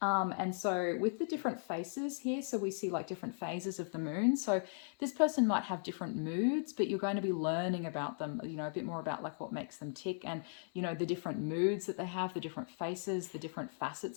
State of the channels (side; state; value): right; silent; 53 dB below the other